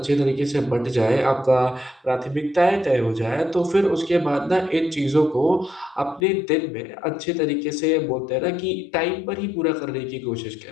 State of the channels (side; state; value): right; drops out; at 6.2 s